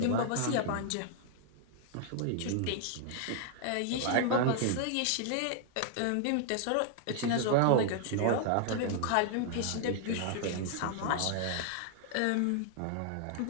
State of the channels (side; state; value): both; different; correlation 0.00